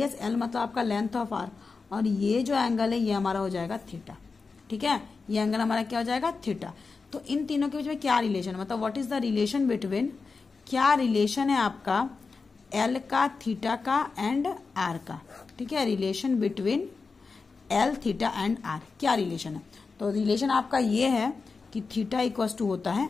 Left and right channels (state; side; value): quieter; right; 4.5 dB